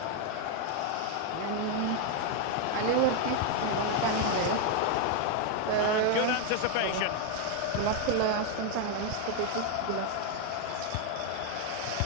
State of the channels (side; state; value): both; different; correlation 0.01